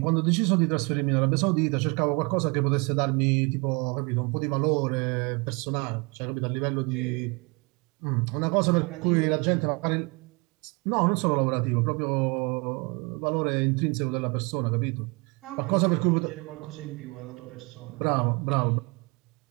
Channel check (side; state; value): left; quieter; 29.5 dB